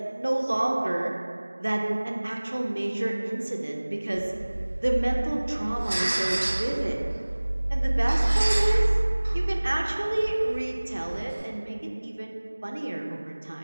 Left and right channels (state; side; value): inverted; both; correlation -1.00